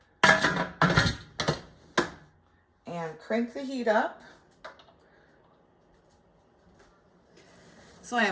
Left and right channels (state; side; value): identical; both; correlation 1.00